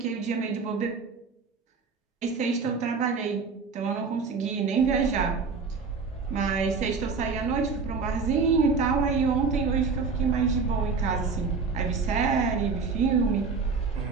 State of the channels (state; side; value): quieter; left; 4.9 dB